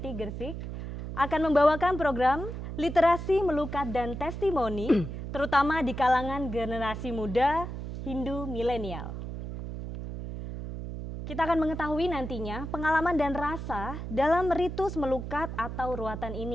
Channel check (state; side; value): noise; right; hum, 7 dB below the sound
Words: Gresik akan membawakan program literasi, melukat, dan testimoni, terutama di kalangan generasi muda Hindu milenial. Kita akan mengetahui nantinya pengalaman dan rasa dalam ritus melukat atau ruatan